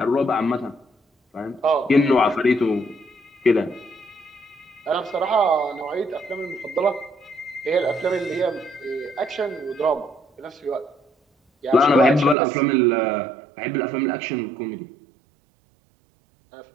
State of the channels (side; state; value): left; drops out; at 12.4 s